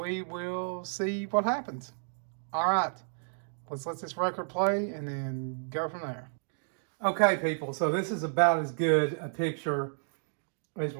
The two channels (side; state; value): left; silent; digital silence